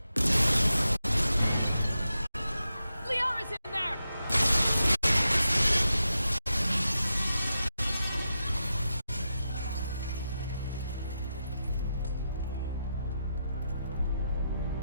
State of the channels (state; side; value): inverted; both; correlation -0.88